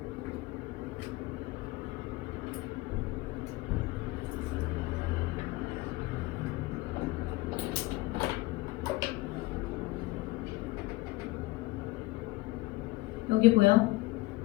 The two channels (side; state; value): right; quieter; 20.3 dB